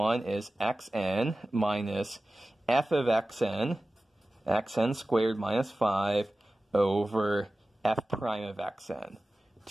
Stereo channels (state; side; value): normal; both; correlation 0.96